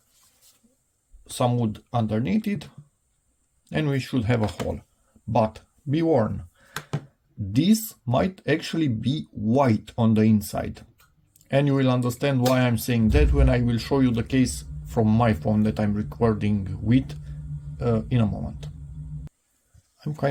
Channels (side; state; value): both; identical; correlation 1.00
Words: some wood underneath it, and we should have a hole. But be warned, this might actually be white on the inside, and you will understand why I'm saying that when I will show you the case from my phone that I'm recording with in a moment. I'm